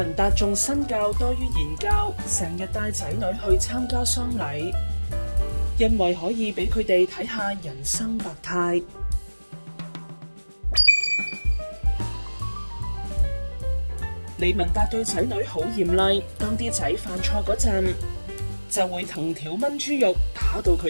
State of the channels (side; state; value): both; inverted; correlation -1.00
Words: 達重身教多於言教，成日帶仔女去參加喪禮，因為可以俾佢哋睇下人生百態。李文達對仔女好嚴厲，當啲仔犯錯嗰陣，就會藤條炆豬肉，打到